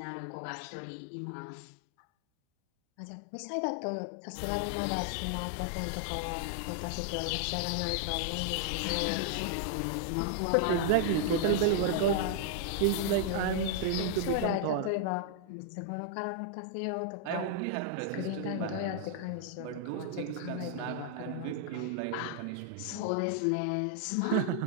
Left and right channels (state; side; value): different; both; correlation 0.00